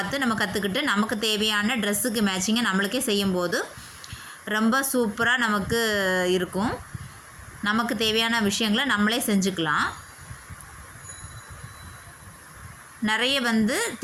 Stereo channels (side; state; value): both; identical; correlation 1.00